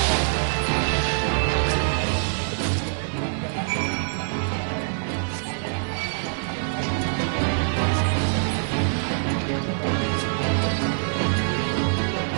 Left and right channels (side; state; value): left; silent; digital silence